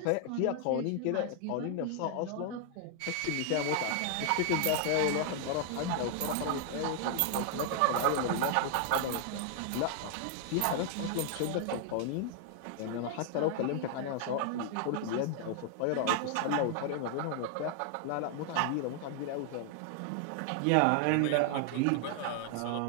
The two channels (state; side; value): different; both; correlation 0.00